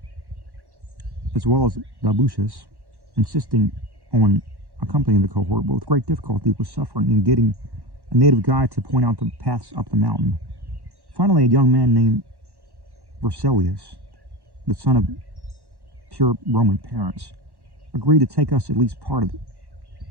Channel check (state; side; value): late; left; 1.1 ms